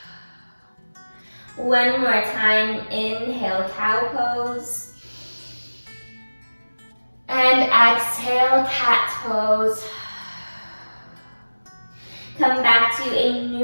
One more time. Inhale, cow pose. And exhale, cat pose. Come back to a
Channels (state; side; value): inverted; both; correlation -1.00